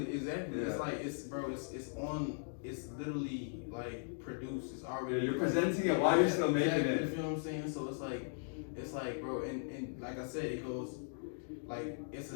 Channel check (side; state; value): right; silent; digital silence